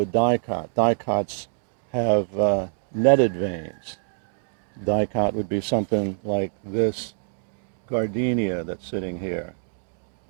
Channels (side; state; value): left; silent; 62 dB below the other